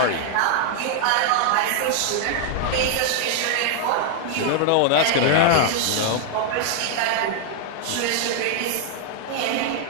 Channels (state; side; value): different; both; correlation 0.00